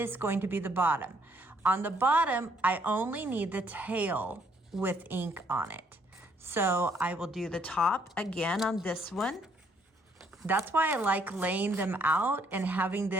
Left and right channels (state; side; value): normal; both; correlation 0.67